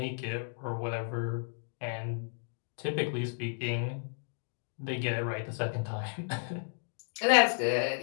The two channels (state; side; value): silent; right; digital silence